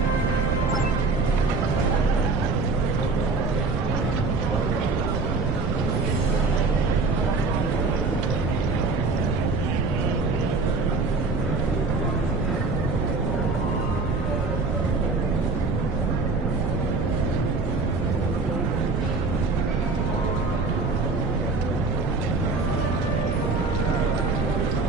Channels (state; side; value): noise; right; rumble, 1 dB below the sound